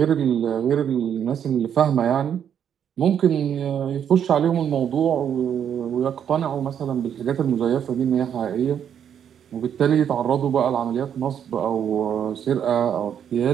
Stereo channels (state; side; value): quieter; left; 8.8 dB